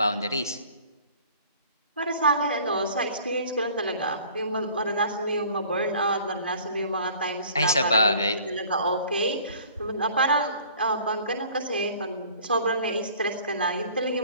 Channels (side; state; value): both; inverted; correlation -0.50